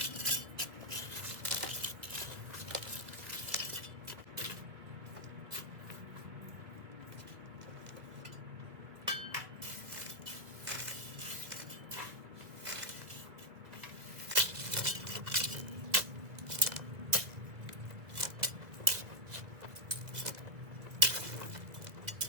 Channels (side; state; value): left; late; 2.0 ms